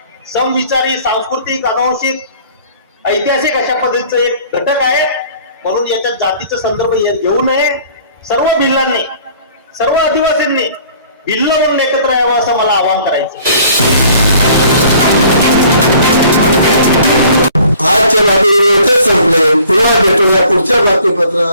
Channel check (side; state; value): both; inverted; correlation -0.53